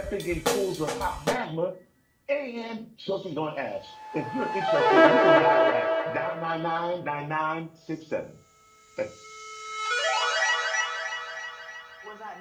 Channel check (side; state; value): both; identical; correlation 1.00